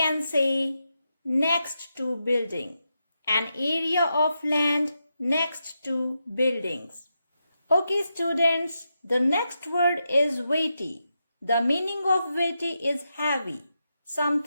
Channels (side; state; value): both; inverted; correlation -0.86